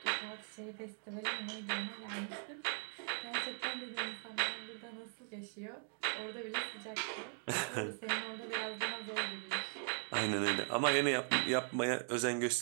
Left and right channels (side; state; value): left; silent; 51 dB below the other